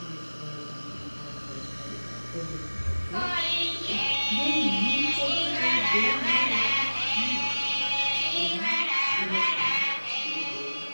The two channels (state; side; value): inverted; both; correlation -1.00